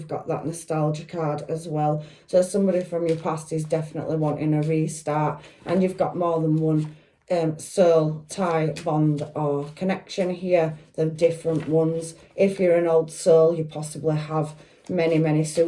got that nostalgia card as well. So somebody from your past is definitely wanting a restart, and you've got more than one soul tie, bond or connection here. They're different ones. If you're an old soul, you possibly have many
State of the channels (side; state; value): both; identical; correlation 1.00